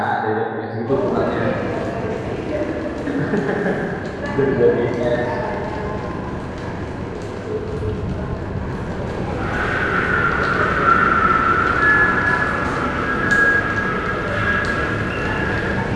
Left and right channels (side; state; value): both; identical; correlation 1.00